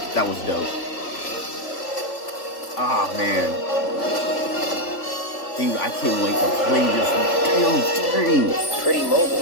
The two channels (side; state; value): right; late; 3.4 ms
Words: That was dope. Ah, man. Dude, I can't wait to play this damn thing. It's pretty